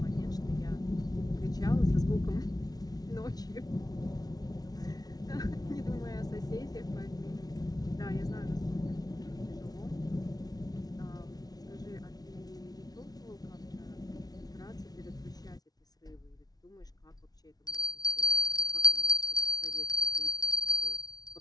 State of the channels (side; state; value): right; late; 0.19 ms